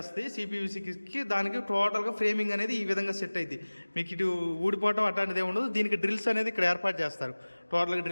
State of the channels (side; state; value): both; inverted; correlation -1.00